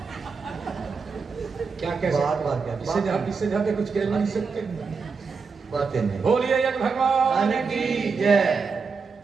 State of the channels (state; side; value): quieter; left; 5.1 dB